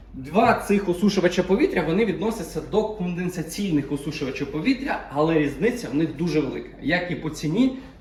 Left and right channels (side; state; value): both; identical; correlation 1.00